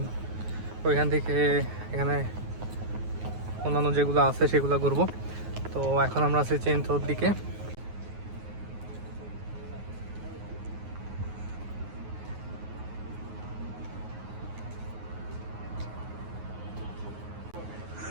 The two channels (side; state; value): left; late; 9.4 ms